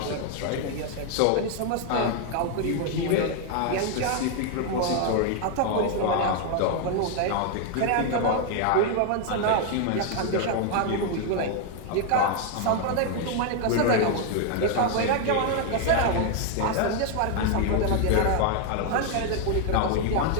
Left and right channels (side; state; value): both; different; correlation 0.00